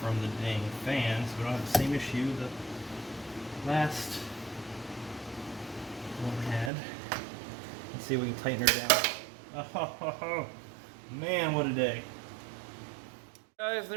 the dang fan so we don't have the same issue the last one had. Let's see if we can tighten her down. Oh, man, what a day. Guys,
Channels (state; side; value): drops out; left; at 6.7 s